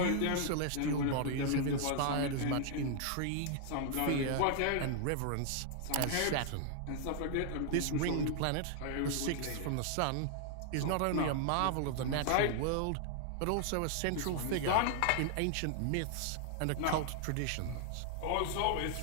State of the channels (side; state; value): both; different; correlation 0.00